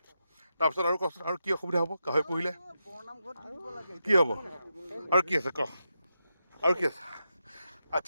তাৰপিছত আৰু কচোন আৰু কি অসুবিধা হ'ব গাহৰি পুহিলে? কি হ'ব আৰু কি আছে ক? আৰু কি আছে?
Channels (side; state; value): both; inverted; correlation -0.86